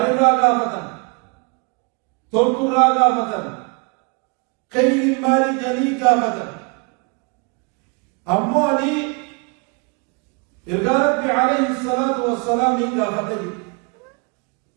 قافة تلقرا قافة خير مالي جلي قافة أمواني إرجع ربي عليه الصلاة والسلام قافة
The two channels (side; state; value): left; quieter; 32.0 dB